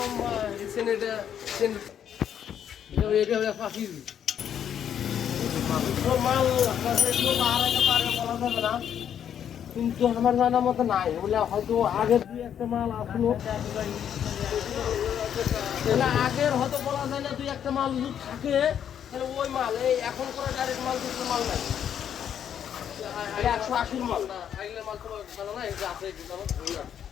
সেনেটা এটা ফাঁসি মাল বলা যাবে না, কিন্তু আমার জানার মতো নাই। বলে হয়তো আগের 2-1টা মাল আসলো, আগের হয়তো বলা যায় না। 2-1টা মাল যদি থাকে তাহলে ওই মাল এই এখন করে ডাইরেক্ট মাল দুটো মাল নাই, 180 মাল না। আগলে মাল তো জানা না, এটা আছে কি জানো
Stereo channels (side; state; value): right; quieter; 9.1 dB